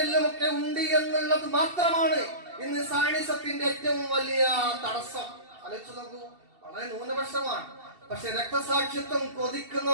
ഒക്കെ ഉണ്ട് എന്നുള്ളത് മാത്രമാണ് ഇന്ന് സയനിസത്തിന്റെ ഏറ്റവും വലിയ തടസ്സം. ആലോചിച്ചു നോക്കൂ, വളരെ ന്യൂനപക്ഷമാണ്. പക്ഷെ രക്തസാക്ഷിത്വം കൊതിക്കുന്ന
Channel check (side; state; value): left; late; 2.7 ms